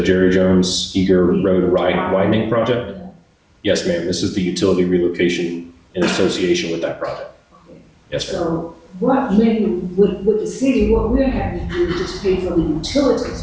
Jerry Jones Eager Road widening project? Yes, ma'am. This is the utility relocation in association with that project. Okay. Yes, ma'am. So what maybe with the city, what we're having to do is just pay for the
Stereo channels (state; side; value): identical; both; correlation 1.00